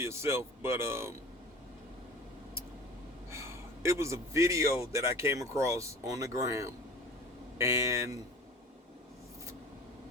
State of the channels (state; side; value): normal; both; correlation 0.41